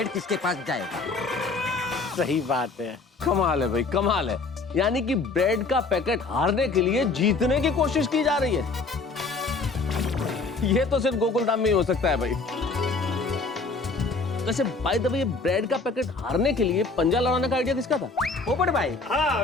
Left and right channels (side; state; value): right; quieter; 3.9 dB